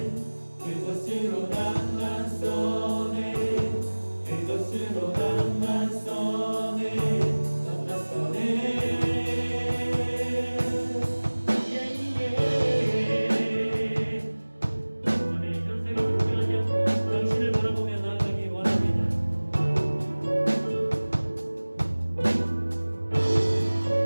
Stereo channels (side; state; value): both; inverted; correlation -1.00